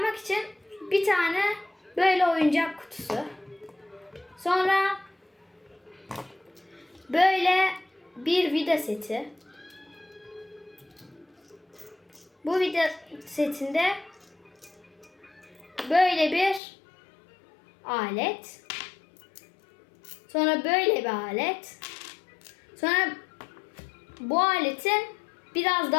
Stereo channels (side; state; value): right; drops out; at 16.6 s